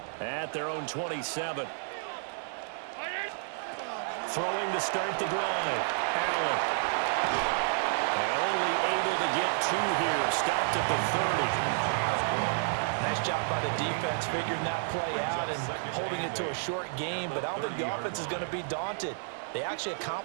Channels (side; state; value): left; silent; 56 dB below the other